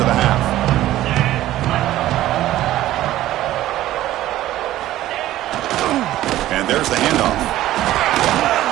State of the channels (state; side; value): quieter; left; 14.4 dB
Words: the half? And there's the handoff.